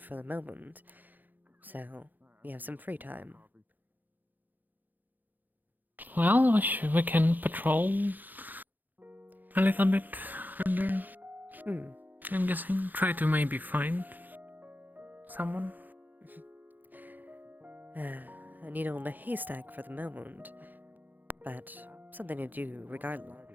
the moment, so we have some free time. Well, we can patrol a little bit further. I'm guessing. Try to maybe find someone. A needle in a haystack for the moment, but something to do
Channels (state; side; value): late; left; 0.085 ms